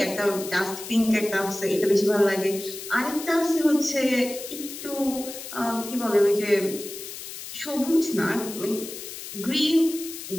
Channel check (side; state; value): left; noise; hiss, 11 dB below the sound